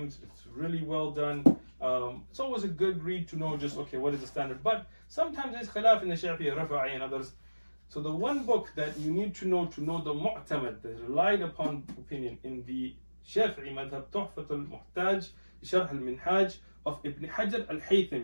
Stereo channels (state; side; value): inverted; both; correlation -1.00